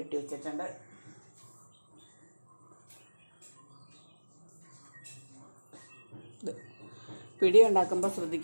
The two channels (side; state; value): both; inverted; correlation -1.00